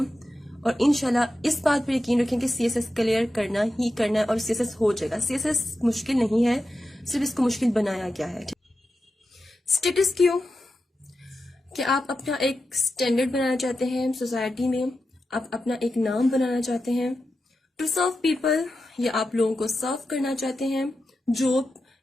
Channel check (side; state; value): both; normal; correlation 0.90